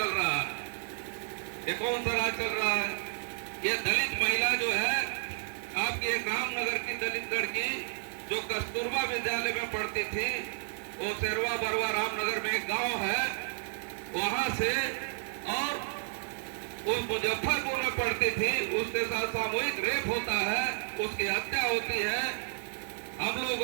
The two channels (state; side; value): silent; left; 57 dB below the other